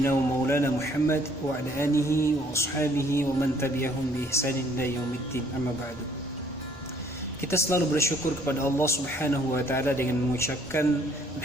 wa maulana Muhammad wa ala alihi wa ashabihi wa man tabi'ahum bi ihsanin ila yaumiddin. Amma ba'du. Kita selalu bersyukur kepada Allah Subhanahu wa taala dengan mengucapkan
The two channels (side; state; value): both; normal; correlation 0.61